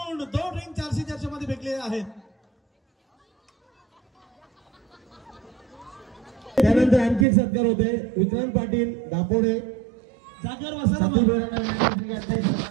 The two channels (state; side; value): drops out; left; at 7.2 s